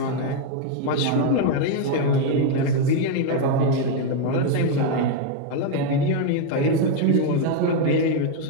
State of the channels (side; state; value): both; different; correlation 0.01